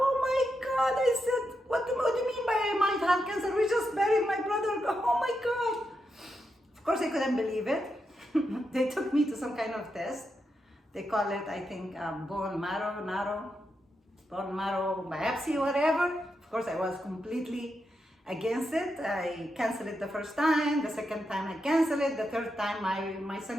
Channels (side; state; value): both; normal; correlation 0.85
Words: I said, what do you mean by I might have cancer? We just buried my brother, oh my God. Of course, I couldn't believe it. They took me to some kind of test. They call it, I think, bone marrow biopsy, whatever. Of course, I was completely against it. I canceled it the first time. The second time I canceled it. The third time my